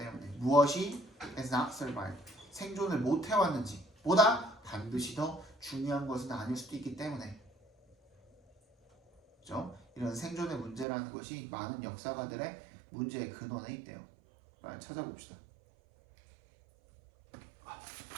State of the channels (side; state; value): left; drops out; at 10.9 s